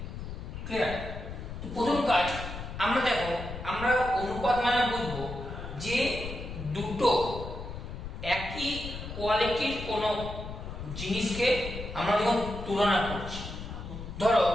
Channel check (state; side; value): noise; left; rumble, 9 dB below the sound